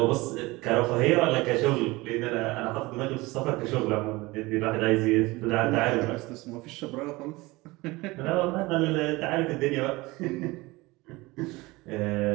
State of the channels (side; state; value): left; quieter; 21.7 dB